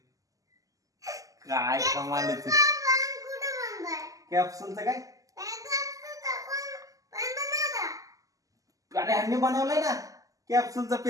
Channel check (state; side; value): late; left; 0.17 ms